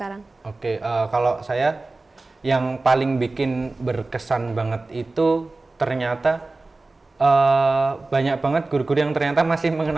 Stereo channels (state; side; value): quieter; left; 3.3 dB